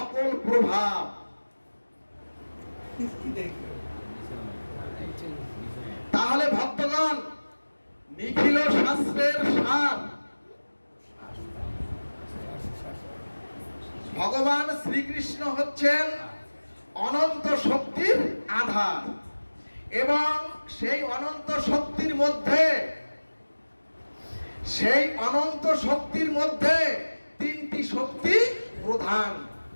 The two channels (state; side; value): inverted; both; correlation -1.00